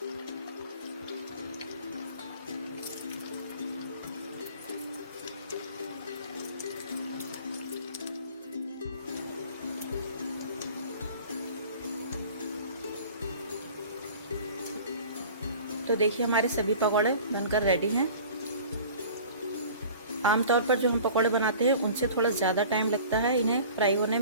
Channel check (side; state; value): both; inverted; correlation -0.44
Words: तो देखिए हमारे सभी पकौड़े बनकर रेडी हैं। आमतौर पर जो हम पकौड़े बनाते हैं उनसे थोड़ा ज़्यादा टाइम लगता है इन्हें फ्राई होने